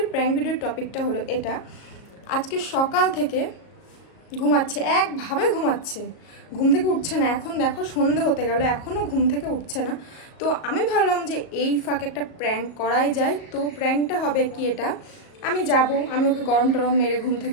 প্র্যাঙ্ক ভিডিওর টপিকটা হলো এটা। আজকে সকাল থেকে ঘুমাচ্ছে, একভাবে ঘুমাচ্ছে, ঘুম থেকে উঠছে না। এখন দেখো সন্ধে হতে গেল, এখনও ঘুম থেকে উঠছে না। তো আমি ভাবলাম যে এই ফাঁকে একটা প্র্যাঙ্ক করাই যায়। তো প্র্যাঙ্কটা হবে কি, এটা আমি যাব, আমি ওকে গরম টরম মেরে ঘুম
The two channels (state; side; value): late; right; 37 ms